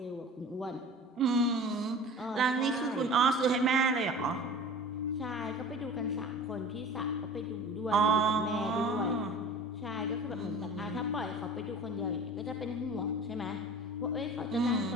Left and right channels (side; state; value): both; normal; correlation 0.40